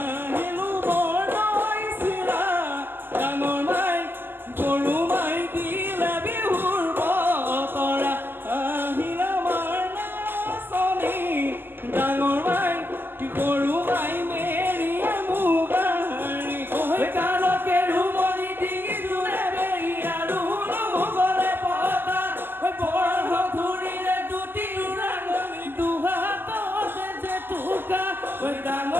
বৰদৈ চিৰা ডাঙৰ মাই গৰু মাই দিলে বিহুৰ বতৰা আহিল আমাৰ নাচনী ডাঙৰ মাই গৰু মাই মেৰিয়ে মুগাৰী কালকে ৰুমনি ডিঙি জোৰে বেৰি আৰু গলে পতা বৰ ধুৰিলে দুটি ৰাঙনি দুহাততে যে টুকা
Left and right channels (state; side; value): late; left; 0.096 ms